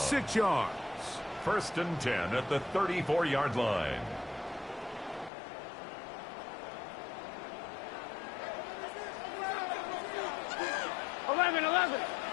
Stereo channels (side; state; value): right; drops out; at 5.3 s